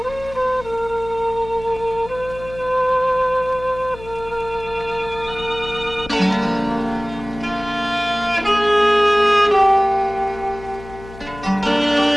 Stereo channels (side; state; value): left; noise; hum, 16 dB below the sound